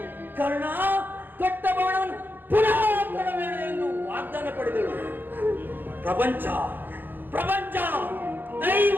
ಕರ್ಣ, ಕೊಟ್ಟ ಬಾಣವನ್ನು ಪುನಃ ಕೊಡಬೇಡ ಎಂದು ವಾಗ್ದಾನ ಪಡೆದಳು. ಪ್ರಪಂಚ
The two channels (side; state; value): left; late; 0.090 ms